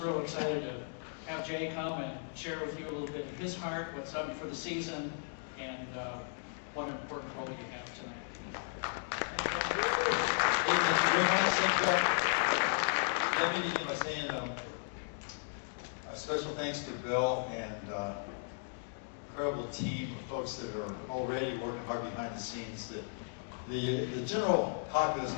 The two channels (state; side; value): silent; right; digital silence